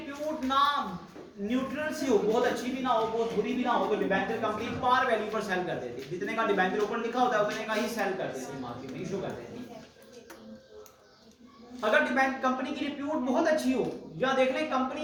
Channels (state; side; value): identical; both; correlation 1.00